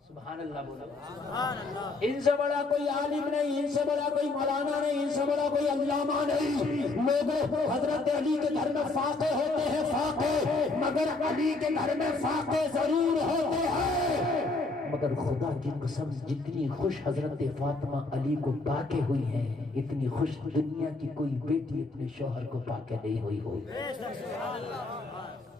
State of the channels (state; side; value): quieter; right; 3.5 dB